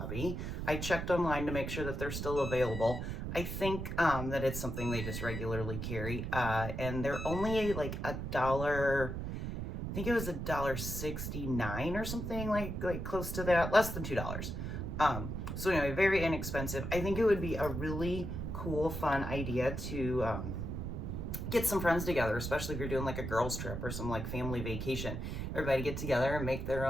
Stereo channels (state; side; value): noise; right; rumble, 4 dB below the sound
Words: I checked online to make sure that they're still available. I think that it's something they just regularly carry, and they're only like I think it was $1.69 or something like close to that, less than $2. So anyway, very inexpensive. I think it would be a really cool, fun idea to get some friends together, especially if you're doing like a girls trip or some like family vacation. Everybody get together and make their